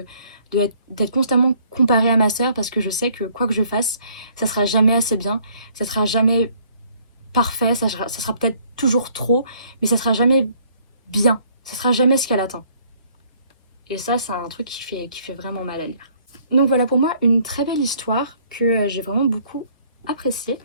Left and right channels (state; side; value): inverted; both; correlation -0.62